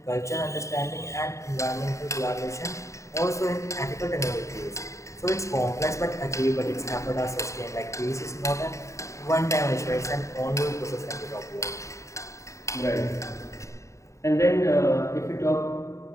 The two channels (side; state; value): right; late; 0.14 ms